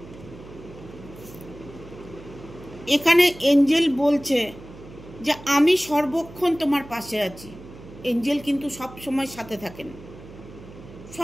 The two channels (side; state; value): right; noise; hum, 17 dB below the sound